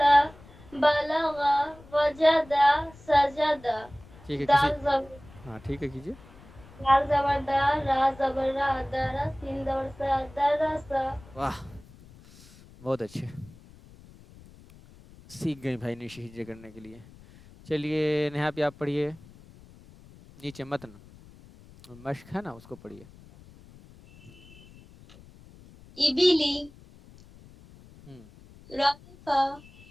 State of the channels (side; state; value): left; noise; rumble, 22 dB below the sound